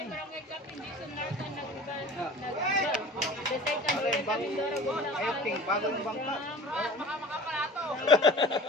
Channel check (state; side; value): normal; both; correlation 0.42